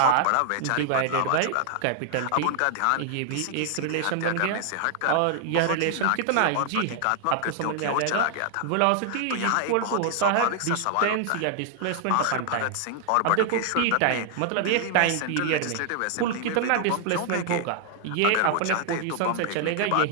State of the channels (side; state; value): both; different; correlation 0.00